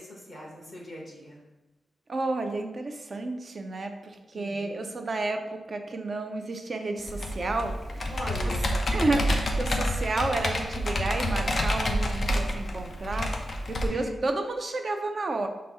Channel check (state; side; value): normal; both; correlation 0.90